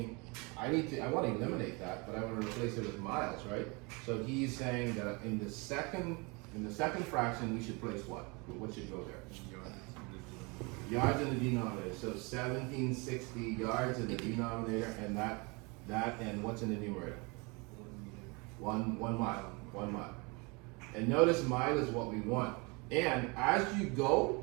I want to eliminate that, but I want to replace it with miles, right? So he's saying that in the second fraction, we should place what? What should go there? Yards in the denominator. So 1760 yards in the denominator, and that and what's in the numerator? 1 mile. And notice mile is what we want. And as you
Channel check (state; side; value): quieter; left; 28.8 dB